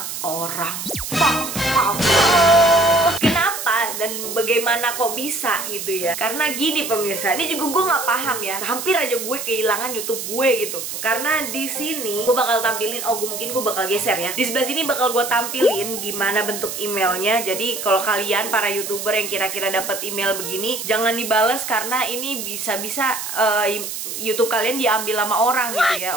orang. Kenapa dan bagaimana kok bisa gitu ya? Karena gini pemirsa, ini juga gue nggak paham ya. Hampir aja gue kehilangan YouTube gue gitu. Karena di sini gue bakal tampilin, mungkin gue bakal geser ya. Di sebelah sini bakal gue tampilin gimana bentuk emailnya. Jadi kalau kalian para YouTuber yang kira-kira dapat email begini, jangan dibales karena ini bisa-bisa YouTube kalian diambil sama orang gitu ya,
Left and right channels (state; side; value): noise; right; hiss, 6 dB below the sound